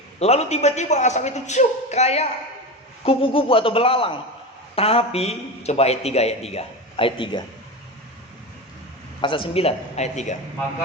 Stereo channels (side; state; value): both; normal; correlation 0.23